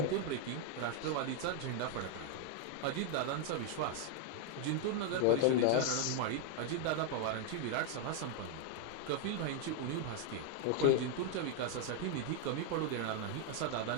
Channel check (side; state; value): both; different; correlation 0.01